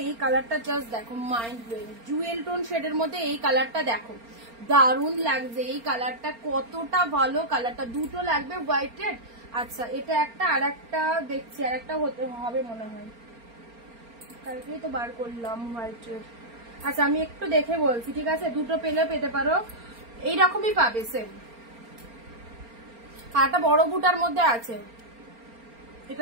এই কালারটা জাস্ট দেখো, মাইন্ড ব্লোয়িং। ডুয়েল টোন শেডের মধ্যে এই কালারটা দেখো, দারুণ লাগছে এই কালারটা, কতটা ভালো কালারটা। দুটো লাগবে হোয়াইট রেড। আচ্ছা এটা একটা, আর একটা দেখছি, আর একটা হতে হবে মনে হয়, কালকেই তো বার করলাম হোয়াইট রেড। আচ্ছা আমি একটু দেখে বলছি, ঠিক আছে। দুটো পেলে পেতে পারো, এইরকমই পাবে সেম। আর একটা বড় বুটার মধ্যে আছে,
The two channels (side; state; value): left; late; 4.3 ms